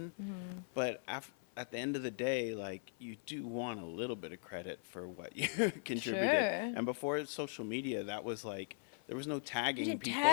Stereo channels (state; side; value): silent; right; 51 dB below the other